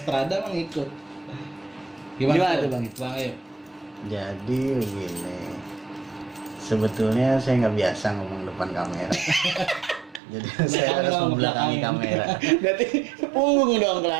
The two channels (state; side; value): drops out; left; at 10.2 s